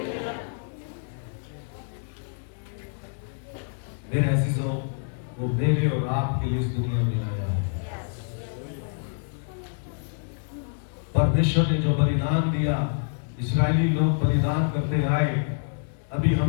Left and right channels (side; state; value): right; silent; 60 dB below the other